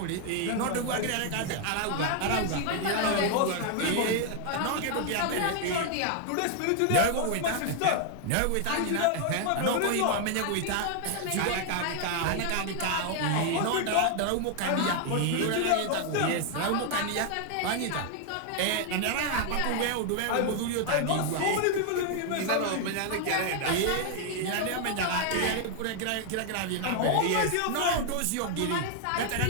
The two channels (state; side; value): different; both; correlation 0.00